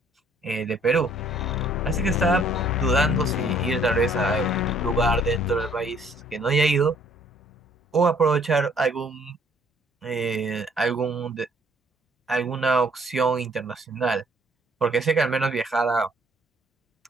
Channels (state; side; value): normal; both; correlation 0.61